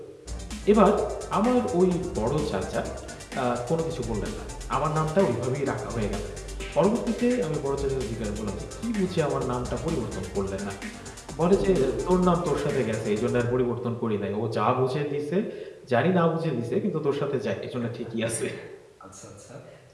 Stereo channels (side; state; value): both; identical; correlation 1.00